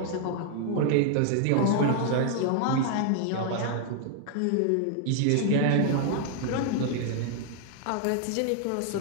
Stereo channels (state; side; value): different; both; correlation 0.00